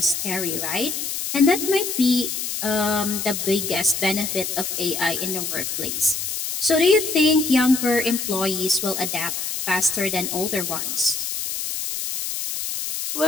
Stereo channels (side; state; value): left; noise; hiss, 3 dB below the sound